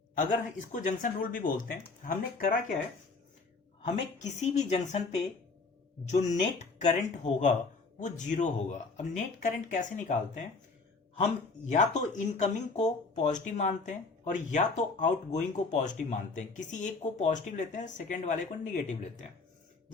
अगर इसको जंक्शन रूल भी बोलते हैं। हमने करा क्या है, हमें किसी भी जंक्शन पे जो नेट करंट होगा वो जीरो होगा। अब नेट करंट कैसे निकालते हैं, हम या तो इनकमिंग को पॉजिटिव मानते हैं और या तो आउटगोइंग को पॉजिटिव मानते हैं। किसी एक को पॉजिटिव लेते हैं, सेकेंड वाले को निगेटिव लेते हैं।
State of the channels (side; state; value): right; quieter; 4.0 dB